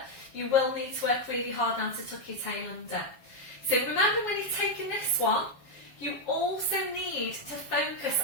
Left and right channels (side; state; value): right; late; 7.4 ms